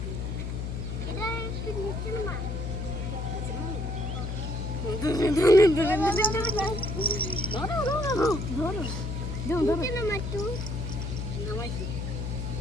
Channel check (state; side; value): noise; left; hum, 4 dB below the sound